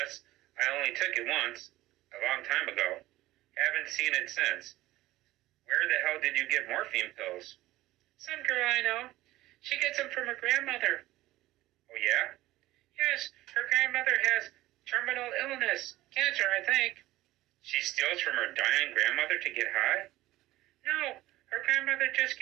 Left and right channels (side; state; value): left; quieter; 16.9 dB